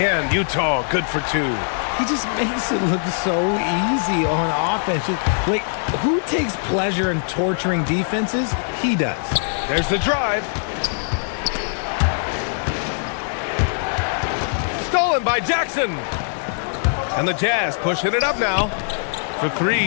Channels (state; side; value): silent; right; digital silence